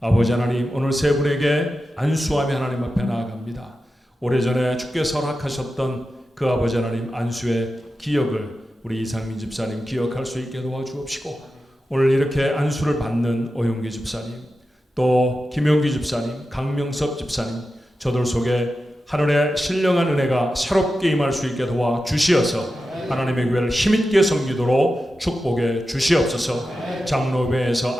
하나님 오늘 세 분에게 안수하며 하나님 앞에 나아갑니다. 오래전에 주께서 허락하셨던 그 아버지 하나님 안수의 기억을 우리 이상민 집사님 기억할 수 있게 도와주옵시고 오늘 이렇게 안수를 받는 오용기 집사님 또 김용기 집사님 강명섭 집사님 저들 속에 하늘의 신령한 은혜가 새롭게 임할 수 있게 도와주시어서 하나님의 교회를 힘있게 섬기도록 축복해 주시옵소서. 장로회에서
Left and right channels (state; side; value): normal; both; correlation 0.91